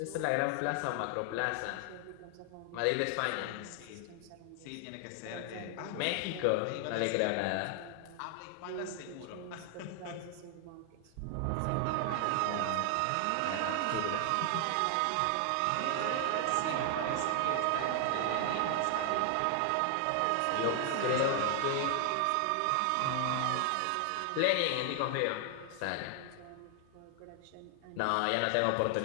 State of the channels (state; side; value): different; both; correlation 0.00